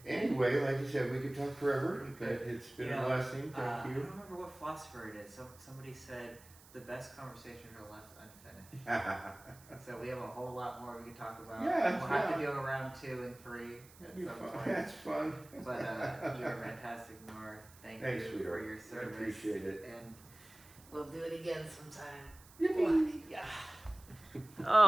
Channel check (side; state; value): right; noise; hiss, 23 dB below the sound